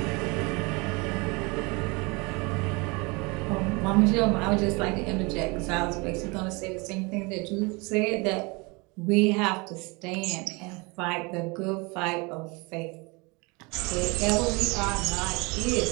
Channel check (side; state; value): left; quieter; 27.6 dB